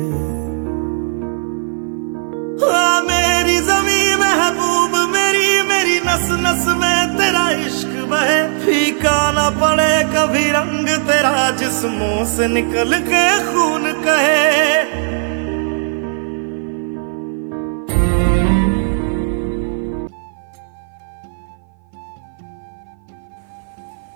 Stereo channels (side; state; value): left; silent; 56 dB below the other